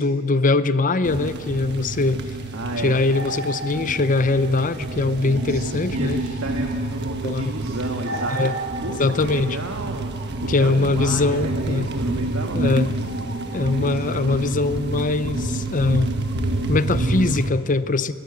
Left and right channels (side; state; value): both; normal; correlation 0.52